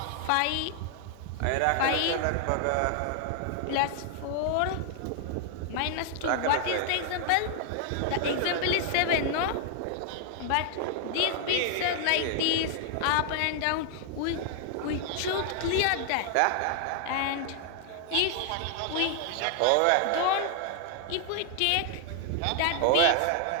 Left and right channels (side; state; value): both; different; correlation 0.00